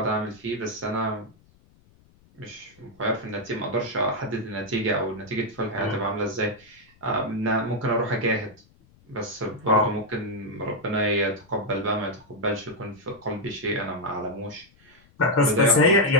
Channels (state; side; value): noise; left; rumble, 30 dB below the sound